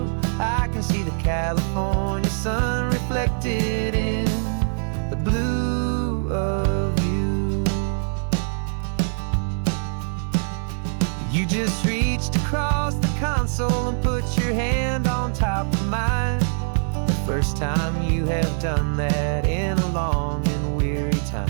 just reached across the console and put your hand on top of mine. The first time you have done that in a long and weary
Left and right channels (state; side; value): silent; left; 60 dB below the other